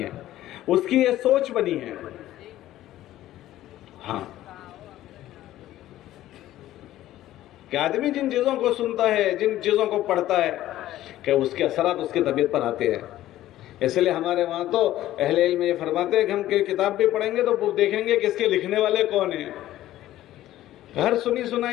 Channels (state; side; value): quieter; right; 14.2 dB